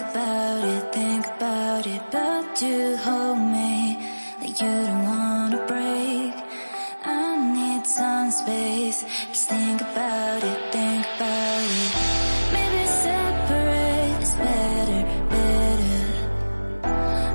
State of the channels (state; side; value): inverted; both; correlation -1.00